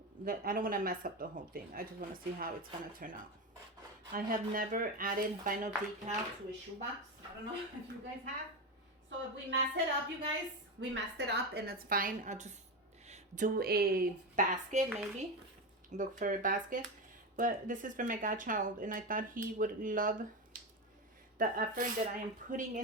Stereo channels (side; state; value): both; normal; correlation 0.17